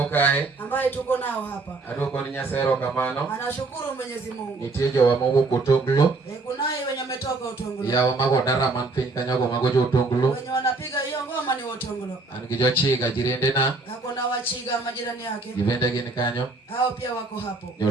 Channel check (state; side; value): quieter; left; 3.5 dB